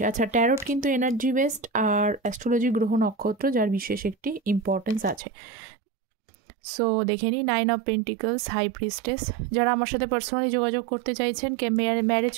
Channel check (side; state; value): left; drops out; at 5.2 s